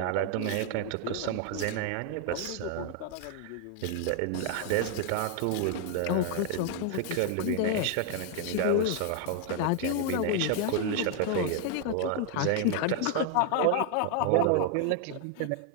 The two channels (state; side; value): different; both; correlation 0.00